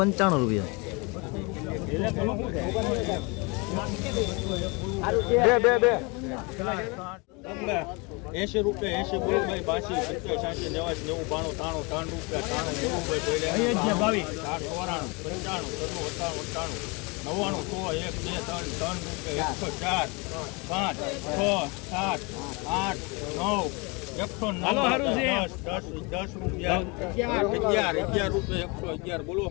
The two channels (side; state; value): right; quieter; 28.9 dB